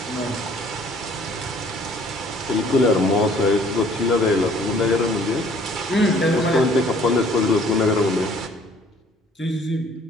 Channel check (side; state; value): both; normal; correlation 0.57